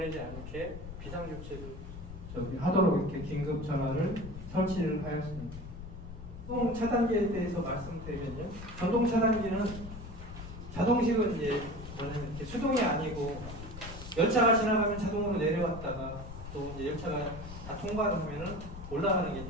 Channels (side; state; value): left; noise; rumble, 11 dB below the sound